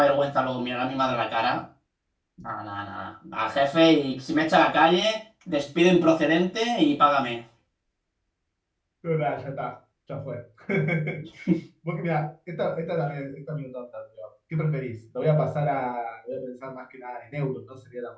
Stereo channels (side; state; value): both; identical; correlation 1.00